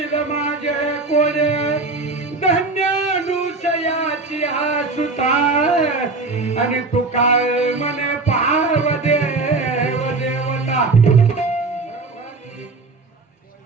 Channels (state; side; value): quieter; left; 3.6 dB